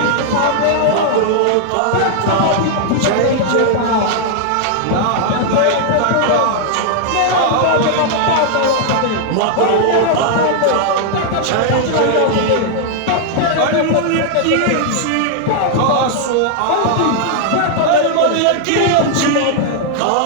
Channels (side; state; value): both; different; correlation 0.00